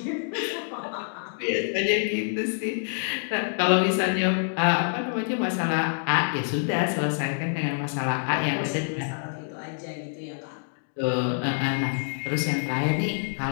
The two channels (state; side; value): silent; right; digital silence